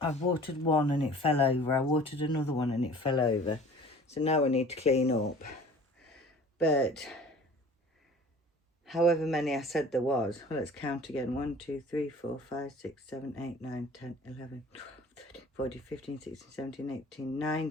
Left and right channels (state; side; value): normal; both; correlation 0.46